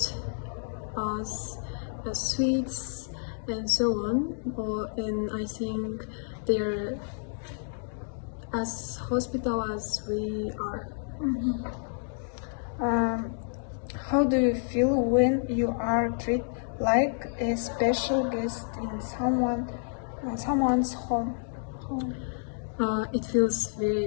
us sweets and so on. And I think they're as hospitable as we are. How do you feel when you are treated like a special guest in someone's home? It feels very,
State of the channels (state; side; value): silent; right; digital silence